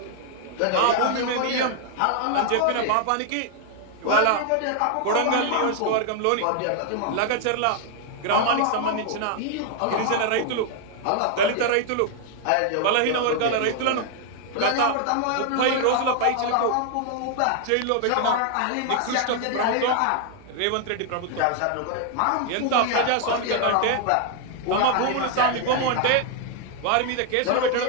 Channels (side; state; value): both; different; correlation 0.00